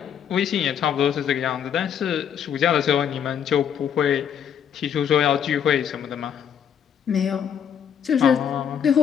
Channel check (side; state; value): right; quieter; 8.5 dB